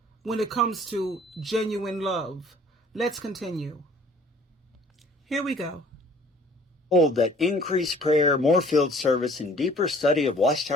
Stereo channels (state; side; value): normal; both; correlation 0.54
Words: when it comes to genuine love. Let's continue. Here we go. Hold that increased prayer, more field service, and deeper study of